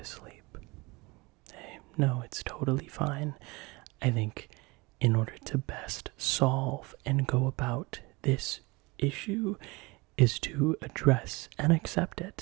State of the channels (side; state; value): left; quieter; 24.8 dB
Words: sleep. Hey, no, it's totally fine. I think in order to best solve and go about this issue is to address and accept